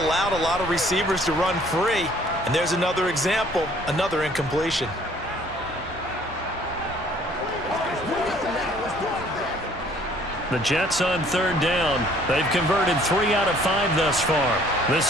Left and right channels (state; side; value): normal; both; correlation 0.58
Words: a lot of receivers to run free. And there's another example, another incompletion. The Jets on 3rd down. They've converted 3 out of 5 thus far.